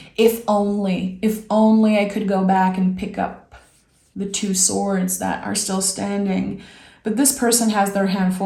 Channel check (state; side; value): identical; both; correlation 1.00